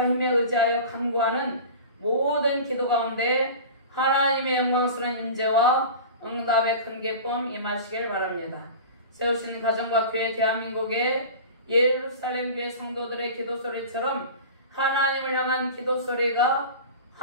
힘에 의지하여 간구하는 모든 기도 가운데 하나님의 영광스러운 임재와 응답의 큰 기쁨 임하시길 바랍니다. 세우신 가정과 교회 대한민국의 예루살렘 교회 성도들의 기도 소리처럼 하나님을 향한 기도 소리가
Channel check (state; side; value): inverted; both; correlation -0.34